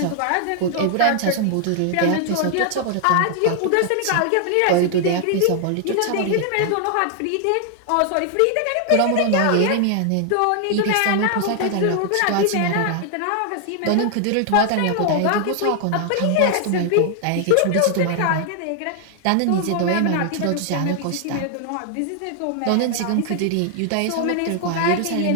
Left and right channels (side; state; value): both; different; correlation 0.00